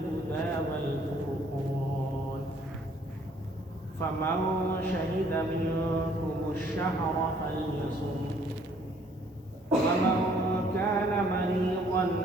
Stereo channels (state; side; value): normal; both; correlation 0.62